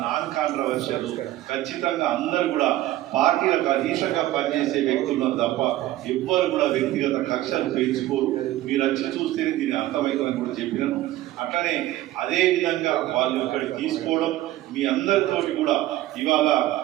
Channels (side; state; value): left; quieter; 15.3 dB